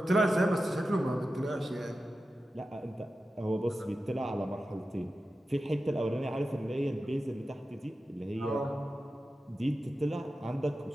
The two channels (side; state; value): both; normal; correlation 0.93